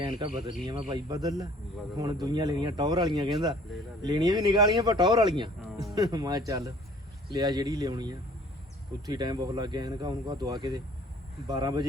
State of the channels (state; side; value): normal; both; correlation 0.54